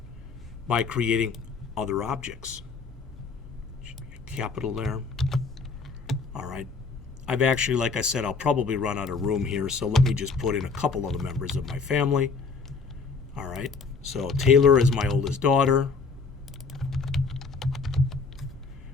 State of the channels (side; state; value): right; quieter; 4.6 dB